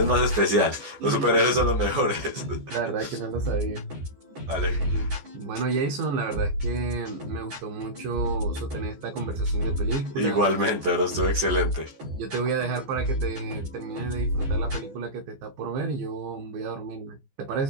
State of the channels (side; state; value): left; late; 14 ms